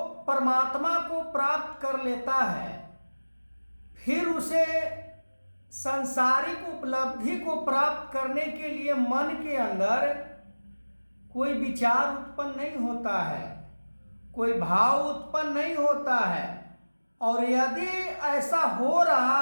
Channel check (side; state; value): both; inverted; correlation -1.00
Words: परमात्मा को प्राप्त कर लेता है फिर उसे सांसारिक उपलब्धि को प्राप्त करने के लिए मन के अंदर कोई विचार उत्पन्न नहीं होता है, कोई भाव उत्पन्न नहीं होता है। और यदि ऐसा हो